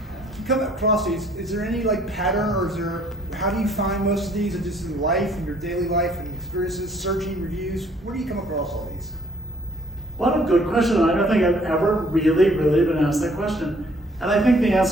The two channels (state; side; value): normal; both; correlation 0.61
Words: You come across these, is there any like pattern, or is there, how do you find most of these? Are just in life, in your daily life and experiences, searching reviews? Where do you come across all these? What a good question. I don't think I've ever really been asked that question. And I think the